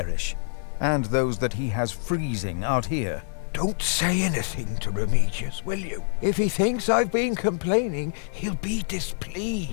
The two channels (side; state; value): right; silent; 61 dB below the other